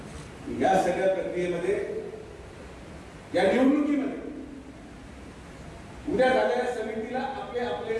या सगळ्या प्रक्रियेमध्ये, या निवडणुकीमध्ये उद्या झालेल्या समितीला आपले आपले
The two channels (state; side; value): identical; both; correlation 1.00